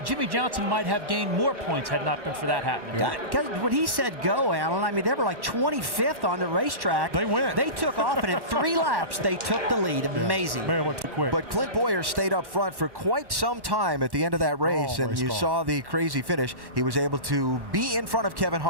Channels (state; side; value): late; left; 1.1 ms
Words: Jimmy Johnson might have gained more points had not been for that happening. Because when he said go, Alan, I mean, they were like 25th on the racetrack. They went. They took off, and in 3 laps, they took the lead. Amazing. Man, went too quick. But Clint Boyer stayed up front for quite some time at the end of that race, and you saw the crazy finish. He was able to be in front of Kevin